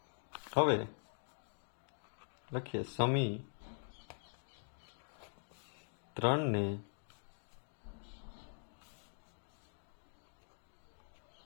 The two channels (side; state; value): right; silent; digital silence